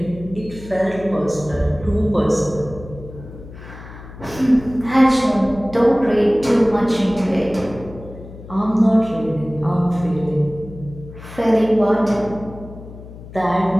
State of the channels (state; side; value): noise; left; hum, 16 dB below the sound